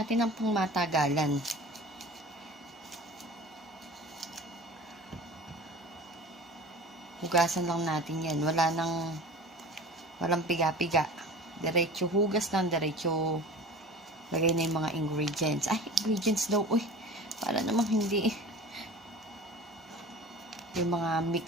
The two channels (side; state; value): both; normal; correlation 0.38